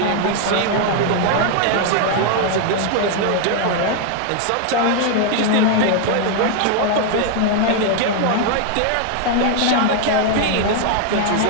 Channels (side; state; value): both; different; correlation 0.00